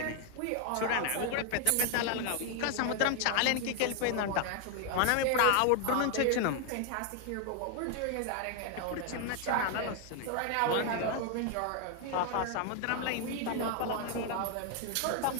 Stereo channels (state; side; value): different; both; correlation 0.01